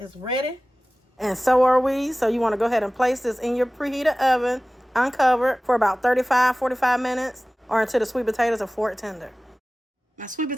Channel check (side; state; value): both; normal; correlation 0.97